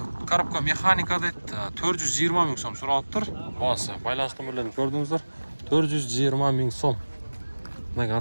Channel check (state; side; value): inverted; both; correlation -1.00